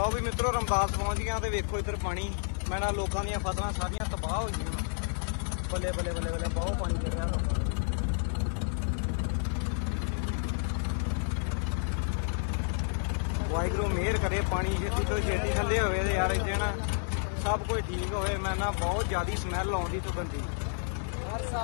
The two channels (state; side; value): silent; right; 58 dB below the other